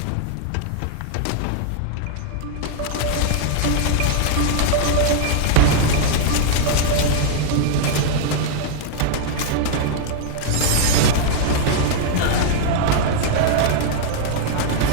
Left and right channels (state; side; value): different; both; correlation -0.01